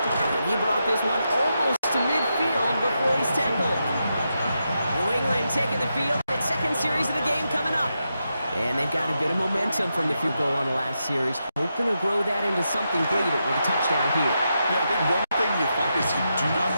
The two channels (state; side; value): inverted; both; correlation -0.86